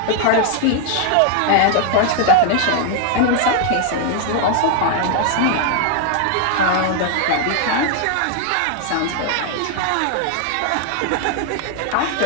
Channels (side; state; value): both; different; correlation 0.00